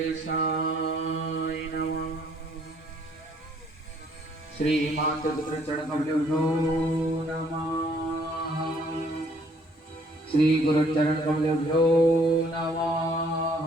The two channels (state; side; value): normal; both; correlation 0.63